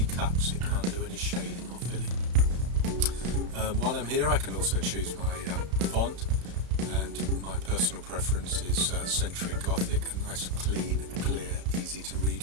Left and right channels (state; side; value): late; left; 33 ms